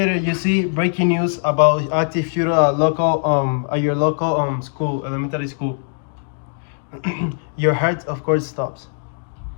you see breaking news about active shooter at your local school, elementary school. Your heart, of course, stops.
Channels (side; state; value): right; silent; digital silence